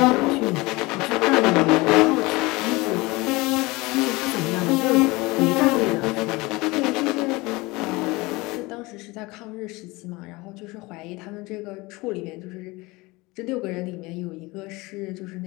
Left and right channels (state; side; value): quieter; right; 22.9 dB